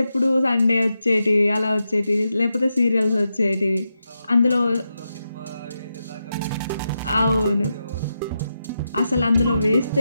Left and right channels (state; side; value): inverted; both; correlation -0.87